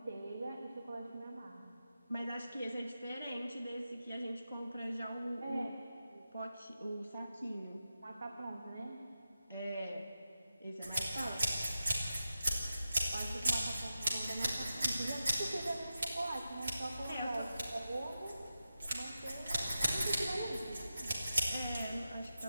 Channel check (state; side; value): inverted; both; correlation -0.90